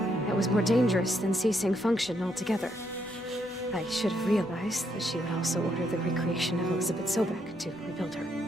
that was more dangerous than ceasing function altogether. I should have realized that she would also order the recreation of Elizabeth Sobek to rebuild her.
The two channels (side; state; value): both; normal; correlation 0.75